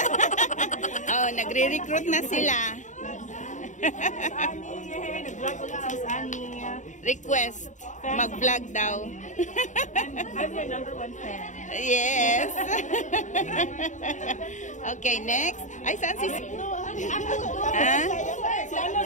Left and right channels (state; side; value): late; right; 0.36 ms